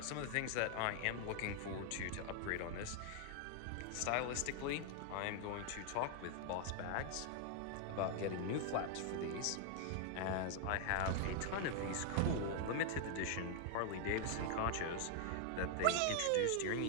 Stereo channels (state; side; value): different; both; correlation 0.00